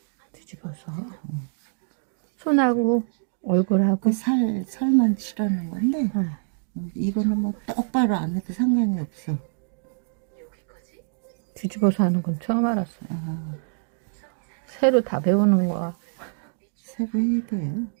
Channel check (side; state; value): left; silent; digital silence